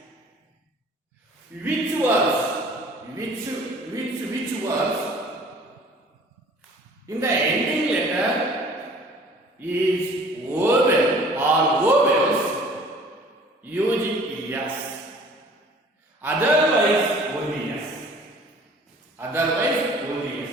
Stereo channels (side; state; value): both; normal; correlation 0.50